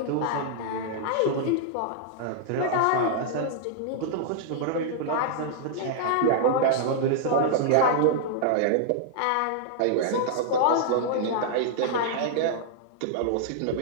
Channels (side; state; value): both; different; correlation -0.01